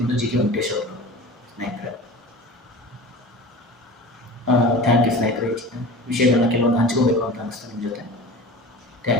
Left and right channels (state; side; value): normal; both; correlation 0.35